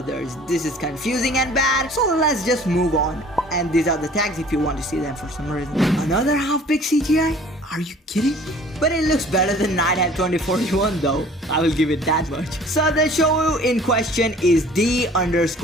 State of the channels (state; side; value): normal; both; correlation 0.50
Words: This is confusing and bad, so let's just move on. And these are the tags if you want to see them for some reason. Another half-big CGI? Are you kidding me? But it looks better than Nighthead 2041 though. I will give it that much. So the show in question is